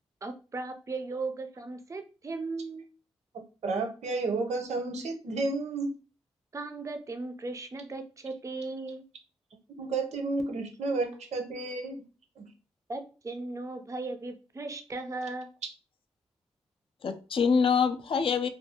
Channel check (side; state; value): both; normal; correlation 0.65